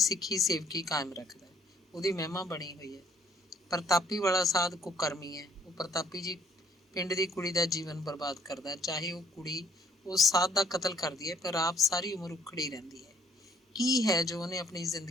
ਸੇਵਕੀ ਕਾਇਮ ਰੱਖਦਾ ਹੈ। ਉਹਦੀ ਮਹਿਮਾ ਬਣੀ ਹੋਈ ਹੈ। ਪ੍ਰਤਾਪੀ ਵਾਲਾ ਸਾਧ ਕੁਕਰਮੀ ਹੈ। ਉਹ ਪ੍ਰਤਾਪੀ ਜੀ ਪਿੰਡ ਦੀ ਕੁੜੀ ਦਾ ਜੀਵਨ ਬਰਬਾਦ ਕਰਦਾ, ਚਾਹੇ ਉਹ ਕੁੜੀ ਉਸ ਸਾਧ ਦਾ ਕਤਲ ਕਰਦੀ ਹੈ, ਪਰ ਆਪ ਸਾਰੀ ਉਮਰ ਉਖੜੀ ਰਹਿੰਦੀ ਹੈ। ਕੀ ਹੈ ਜੋ ਉਹਨੇ ਆਪਣੀ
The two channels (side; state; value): both; normal; correlation 0.64